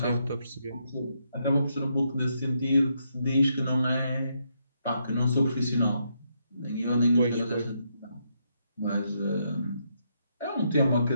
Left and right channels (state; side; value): inverted; both; correlation -0.78